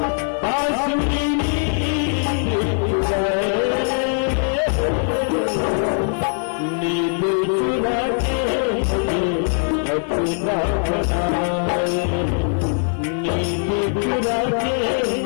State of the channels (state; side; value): silent; right; 62 dB below the other